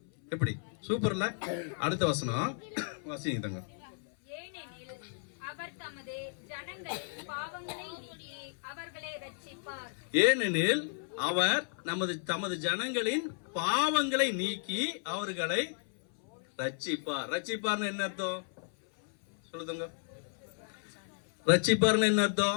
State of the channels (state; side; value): silent; right; 55 dB below the other